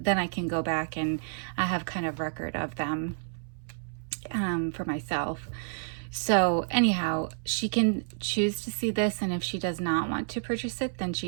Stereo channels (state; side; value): silent; left; 58 dB below the other